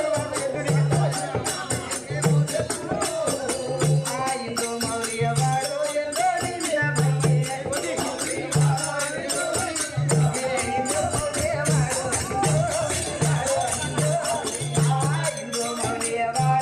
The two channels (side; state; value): both; identical; correlation 1.00